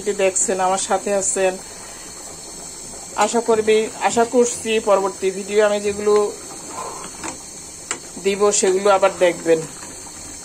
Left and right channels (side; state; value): both; identical; correlation 1.00